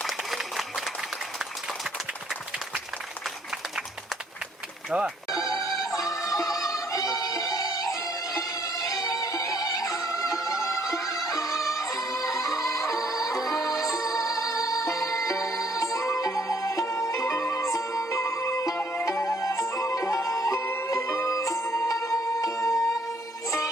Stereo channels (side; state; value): both; normal; correlation 0.65